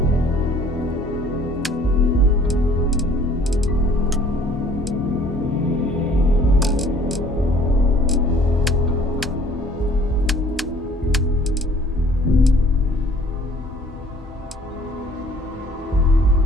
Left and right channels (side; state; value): both; normal; correlation 0.55